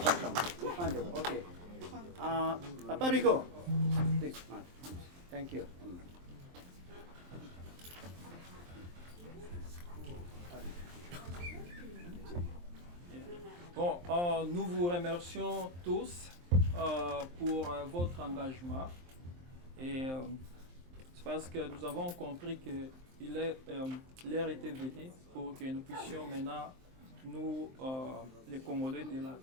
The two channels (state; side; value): late; left; 23 ms